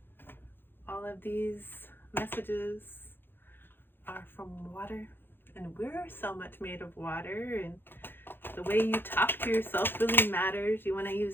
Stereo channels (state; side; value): late; right; 0.10 ms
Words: All of these messages are from water, and we're so much made of water, and The way you talk to yourself really matters. You want to